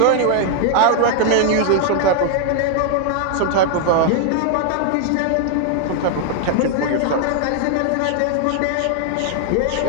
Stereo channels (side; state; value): both; different; correlation 0.00